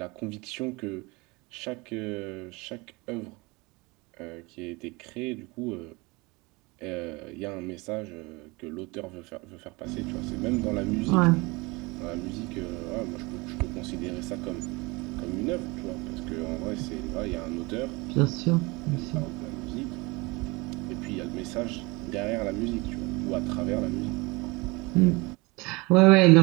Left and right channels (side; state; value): left; quieter; 25.1 dB